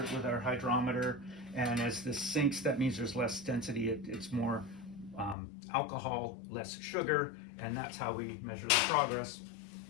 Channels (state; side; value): drops out; right; at 5.4 s